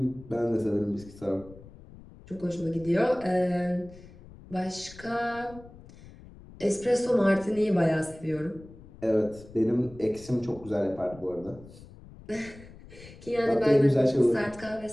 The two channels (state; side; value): noise; left; rumble, 19 dB below the sound